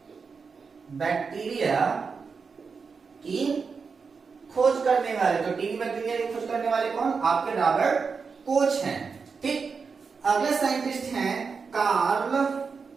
बैक्टीरिया की खोज करने वाले। तो टीबी बैक्टीरिया की खोज करने वाले कौन? आपके रॉबर्ट कोच हैं। ठीक, अगले साइंटिस्ट हैं कार्ल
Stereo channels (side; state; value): left; quieter; 5.3 dB